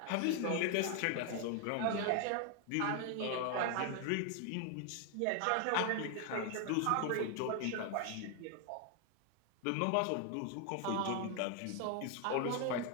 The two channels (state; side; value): different; both; correlation 0.01